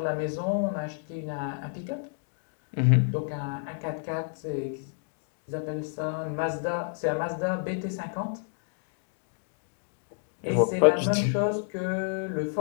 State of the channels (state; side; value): silent; right; digital silence